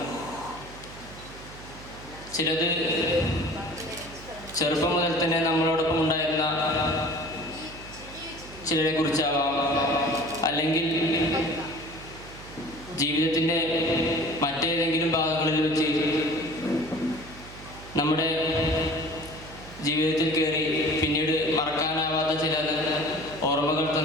ചിലത് ചെറുപ്പം മുതൽ തന്നെ നമ്മളോടൊപ്പം ഉണ്ടായിരുന്ന ചിലരെ കുറിച്ചാവാം, അല്ലെങ്കിൽ ജീവിതത്തിൻ്റെ മറ്റേതെങ്കിലും ഭാഗങ്ങളിൽ വെച്ച് നമ്മുടെ ജീവിതത്തിൽ കയറി പിന്നീട് മറക്കാനാവാത്ത ചില ഓർമ്മകൾ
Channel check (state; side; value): noise; right; hum, 17 dB below the sound